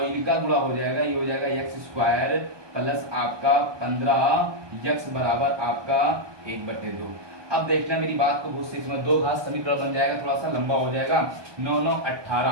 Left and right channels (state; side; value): late; left; 1.2 ms